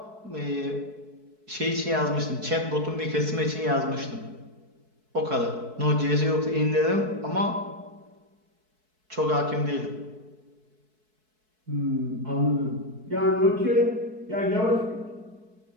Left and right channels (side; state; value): left; late; 4.6 ms